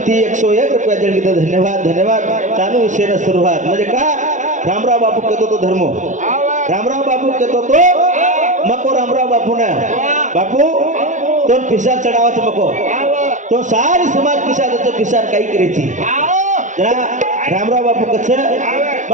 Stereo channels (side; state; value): left; late; 0.36 ms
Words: 101 रुपया देणगी तो धन्यवाद धन्यवाद चालू विषय सुरुवात म्हणजे का रामराव बापू कहतो तो धर्मो रामराव बापू कहतो तो मको रामराव बापू ना बापू तो पिसार चढावाच मको तो सारी समाज पिसार काही करेची जरा रामराव बापू कछ